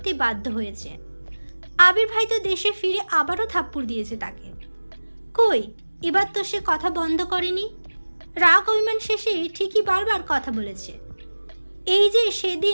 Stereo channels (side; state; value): both; inverted; correlation -1.00